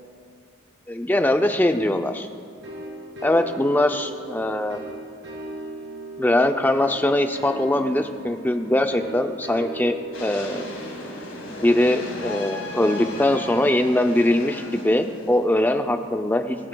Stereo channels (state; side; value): normal; both; correlation 0.82